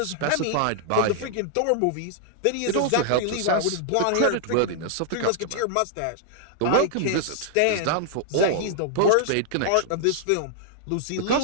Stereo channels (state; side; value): different; both; correlation -0.01